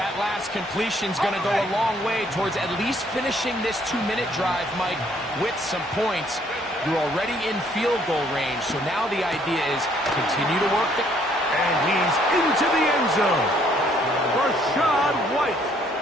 last completion's going to go a long way towards at least finishing this 2-minute drive, Mike, with some points. You're already in field goal range, so now the idea is continue to work the... And he's into the end zone. Rashad White.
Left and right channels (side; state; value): both; normal; correlation 0.65